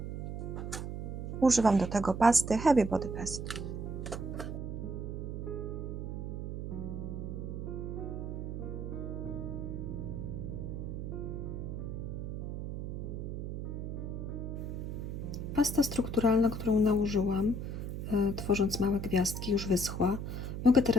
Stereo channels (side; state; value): right; noise; hum, 5 dB below the sound